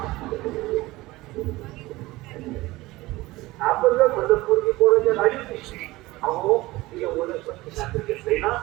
आपण जर म्हणत मुलगी पोराच्या गाडीत दिसली अहो तिला वनस्पती शास्त्र घेतलंय ना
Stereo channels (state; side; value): quieter; left; 19.5 dB